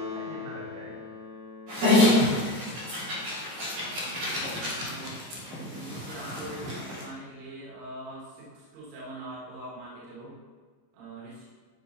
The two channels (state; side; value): late; left; 26 ms